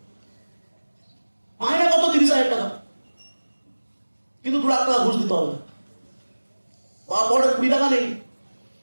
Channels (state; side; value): inverted; both; correlation -1.00